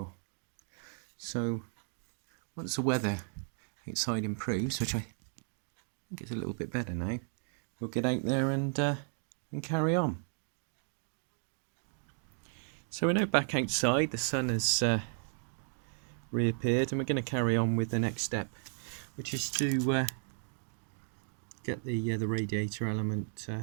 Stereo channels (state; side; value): silent; left; 55 dB below the other